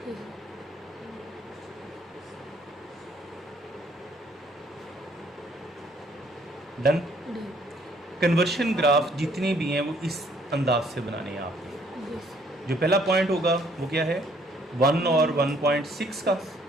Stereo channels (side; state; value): both; normal; correlation 0.64